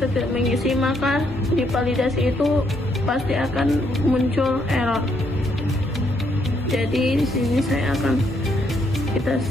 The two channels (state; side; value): normal; both; correlation 0.73